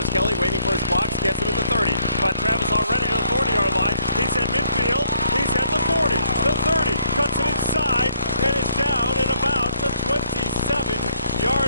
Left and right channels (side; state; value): both; inverted; correlation -0.65